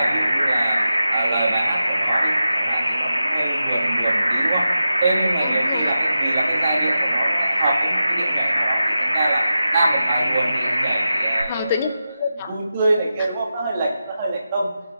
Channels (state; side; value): inverted; both; correlation -0.91